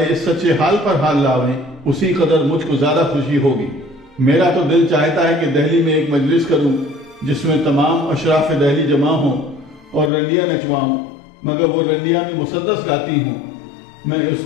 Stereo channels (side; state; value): right; drops out; at 10.1 s